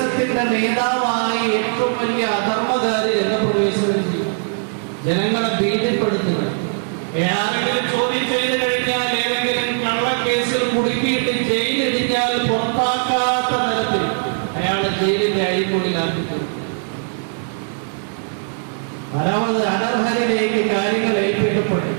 നേതാവായി ഏറ്റവും വലിയ അധർമ്മകാരി രംഗപ്രവേശനം ചെയ്യും. ജനങ്ങളെ ഭീതിപ്പെടുത്തുക. ആരെങ്കിലും ചോദ്യം ചെയ്ത് കഴിഞ്ഞാൽ, ഏതെങ്കിലും കള്ളക്കേസിൽ കുടുക്കിയിട്ട് ജയിലിടിഞ്ഞാൽ പുറത്താക്കാത്ത തരത്തിൽ അയാളെ ജയിലിന്റെ അഴിമൊഴിയിലാക്കി. നാലാമത് അനർഹരിലേക്ക് കാര്യങ്ങൾ ഏൽപ്പിക്കപ്പെടും.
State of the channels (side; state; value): left; silent; digital silence